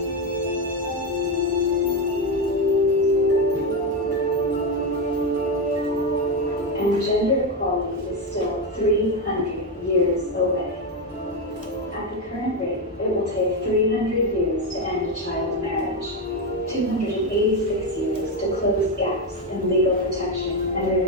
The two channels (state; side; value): normal; both; correlation 0.09